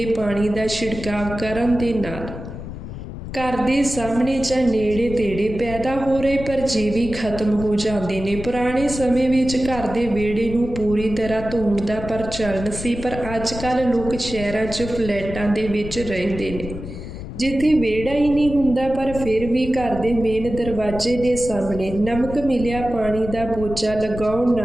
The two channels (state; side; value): noise; left; rumble, 10 dB below the sound